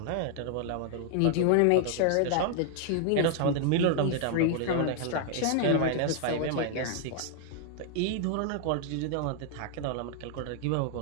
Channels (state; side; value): different; both; correlation 0.00